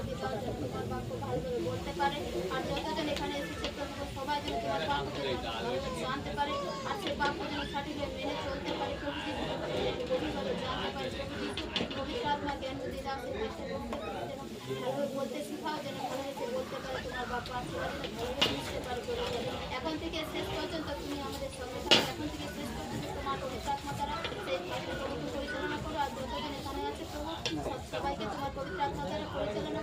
এখন থেকে শেষ পর্যন্ত তুমি আমাদের সঙ্গে থাকো। এখন থেকে শেষ পর্যন্ত তোমার পবিত্র আত্মা দ্বারা সেই কাজগুলোকে পরিচালনা করো। আর যতজন এখানে আছে প্রভু, সবাইকে তোমার পবিত্র আত্মা দ্বারা পরিচালনা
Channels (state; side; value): identical; both; correlation 1.00